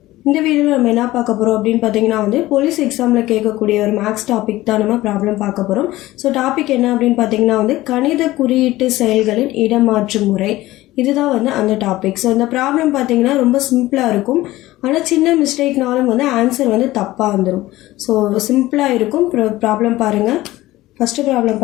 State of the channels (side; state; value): right; quieter; 17.2 dB